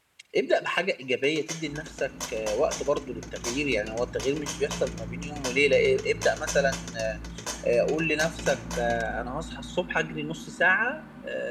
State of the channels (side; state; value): both; identical; correlation 1.00